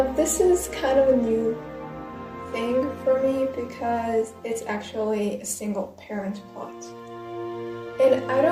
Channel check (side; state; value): both; identical; correlation 1.00